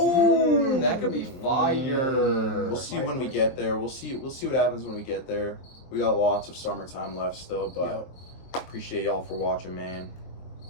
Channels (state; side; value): late; right; 23 ms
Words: That could be fire. We'll see when we get there. We'll see what happens when we get there. We got lots of summertime left still, but appreciate y'all for watching, man.